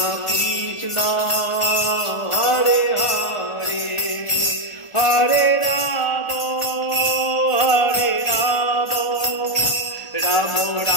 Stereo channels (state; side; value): late; right; 1.4 ms